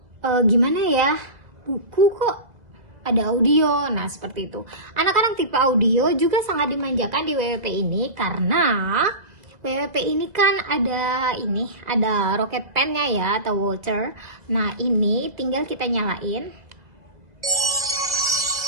Gimana ya? Buku kok ada audio. Nah, seperti itu. Anak-anak tipe audio juga sangat dimanjakan di WWP ini karena WWP ini kan ada rocket pen-nya ya, atau Walter. Nah, ini tinggal kita nyalain.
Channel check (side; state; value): left; late; 2.0 ms